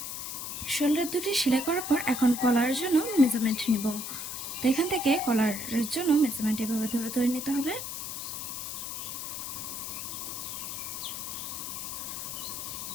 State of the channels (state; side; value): noise; left; hiss, 6 dB below the sound